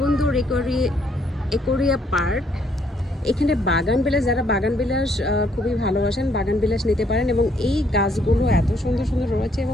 একুরিয়া পার্ক। এখানে বাগান বিলাস, যারা বাগান বিলাস খুবই ভালোবাসেন বাগান বিলাস নিতে পারেন, এবং এই গাছগুলো এত সুন্দর সুন্দর রয়েছে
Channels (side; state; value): both; normal; correlation 0.69